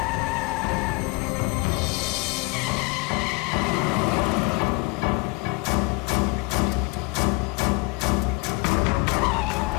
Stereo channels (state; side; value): quieter; right; 26.9 dB